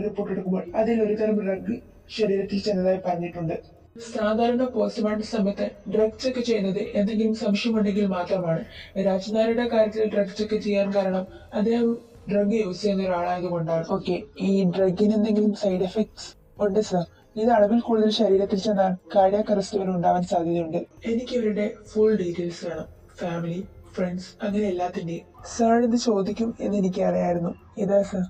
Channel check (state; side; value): identical; both; correlation 1.00